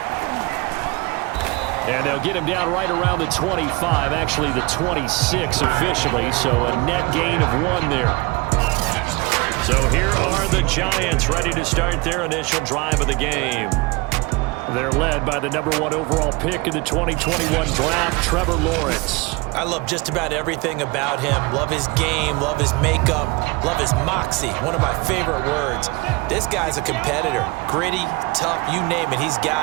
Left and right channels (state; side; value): quieter; left; 25.2 dB